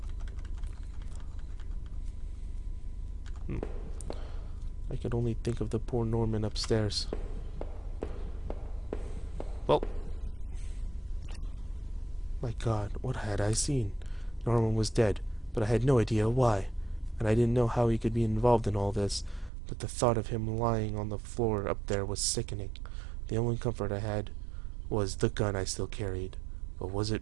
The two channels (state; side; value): drops out; left; at 19.5 s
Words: I could only think of the poor Norman upstairs. Well, my God, what had I seen? Norman was dead, but I had no idea why, and I didn't know how he could be involved in all this, but the thought of him lying on the floor up there was sickening. The only comfort I had was the gun I still carried. But was